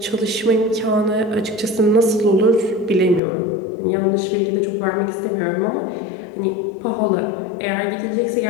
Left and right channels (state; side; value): drops out; right; at 3.2 s